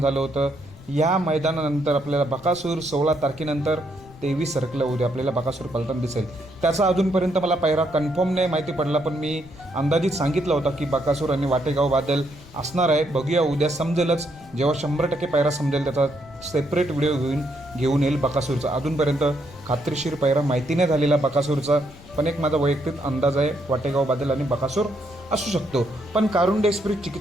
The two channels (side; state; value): left; noise; rumble, 20 dB below the sound